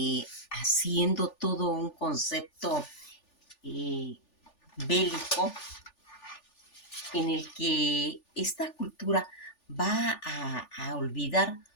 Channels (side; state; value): right; late; 3.4 ms